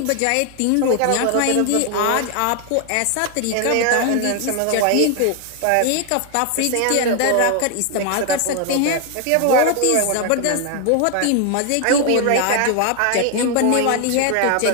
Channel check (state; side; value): different; both; correlation 0.00